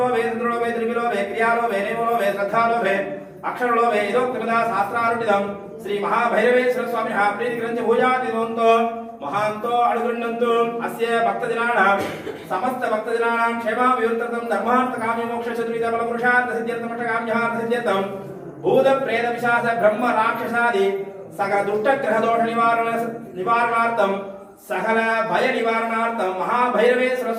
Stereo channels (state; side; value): identical; both; correlation 1.00